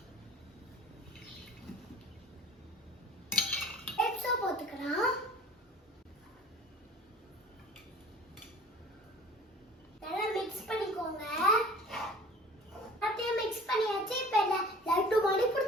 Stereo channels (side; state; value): both; normal; correlation 0.44